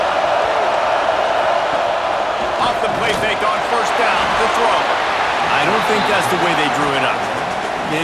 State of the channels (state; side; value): identical; both; correlation 1.00